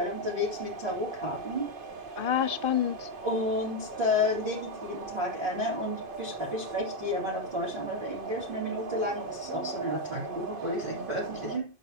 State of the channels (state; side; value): late; left; 2.5 ms